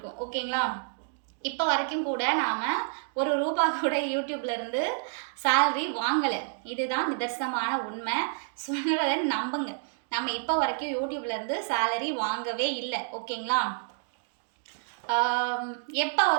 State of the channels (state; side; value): silent; left; digital silence